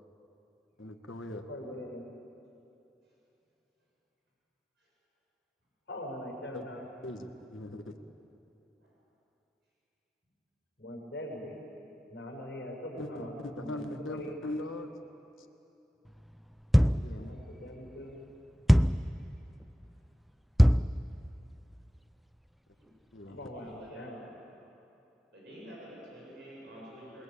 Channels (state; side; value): normal; both; correlation 0.94